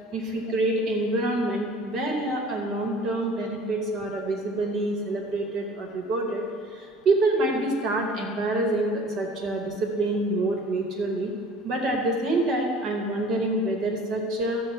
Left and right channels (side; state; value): both; normal; correlation 0.48